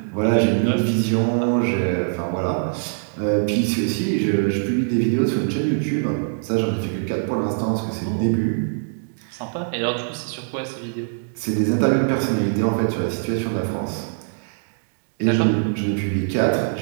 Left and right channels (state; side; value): silent; left; digital silence